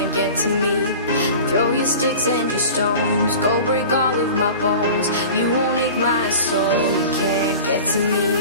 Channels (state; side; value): inverted; both; correlation -0.38